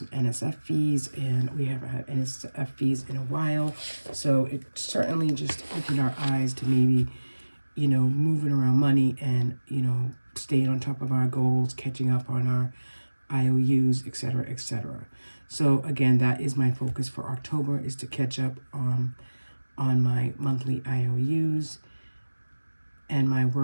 NSF fees, and we haven't had NSF fees in a while. So it certainly just opened our eyes to maybe, moving around money and, staying on top of our goals, catching up on our IOUs, etc., etc. So again, that is my focus for October, is to catch up on my monthly IOUs and my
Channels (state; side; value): inverted; both; correlation -1.00